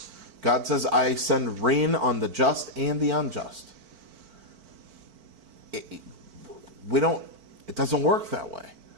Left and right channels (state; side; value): late; left; 4.5 ms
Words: God says, I send rain on the just and the unjust. It doesn't work that way.